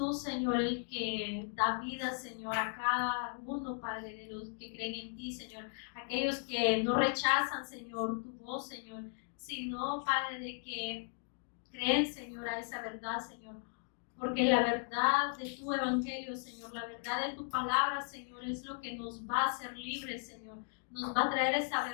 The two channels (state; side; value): silent; right; 53 dB below the other